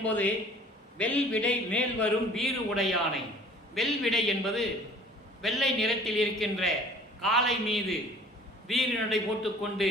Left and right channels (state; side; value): normal; both; correlation 0.49